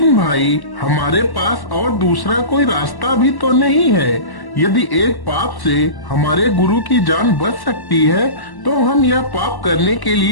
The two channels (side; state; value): right; late; 1.1 ms